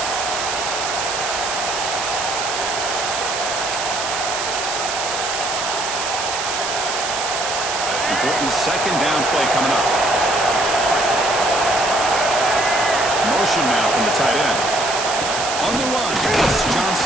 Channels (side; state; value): right; noise; hiss, 3 dB below the sound